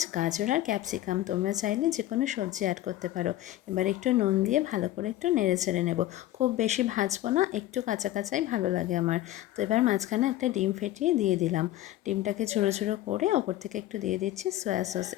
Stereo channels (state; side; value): quieter; right; 14.4 dB